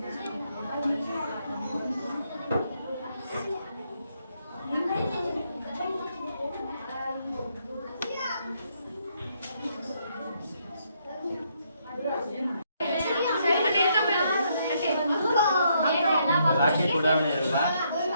ರಾಕೆಟ್ ಉಡಾವಣೆ ಇರಲ್ಲ,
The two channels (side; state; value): both; inverted; correlation -0.74